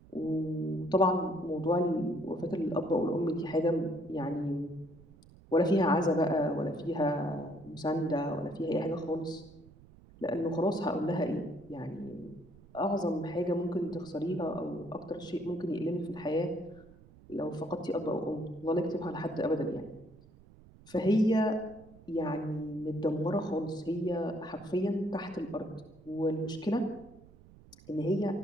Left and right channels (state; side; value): noise; right; rumble, 23 dB below the sound